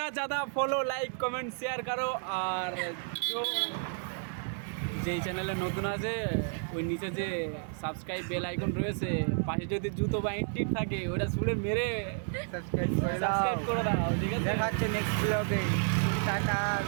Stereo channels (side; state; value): left; silent; 57 dB below the other